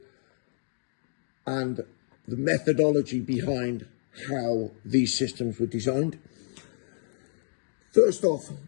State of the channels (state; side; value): silent; right; digital silence